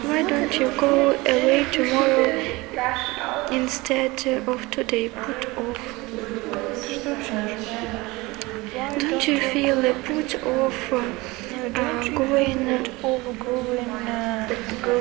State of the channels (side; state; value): left; quieter; 22.5 dB